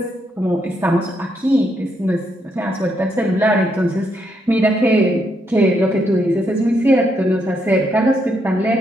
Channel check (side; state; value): both; normal; correlation 0.77